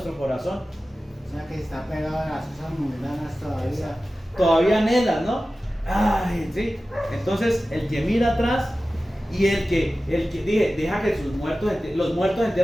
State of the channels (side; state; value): both; normal; correlation 0.95